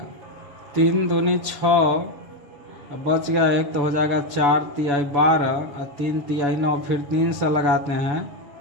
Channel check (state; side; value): late; left; 7.0 ms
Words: 3 दूनी 6, बच गया 1 तो हो जाएगा 4 तिहाई 12 और 3 तिहाई 9। फिर 3 से लगाते हैं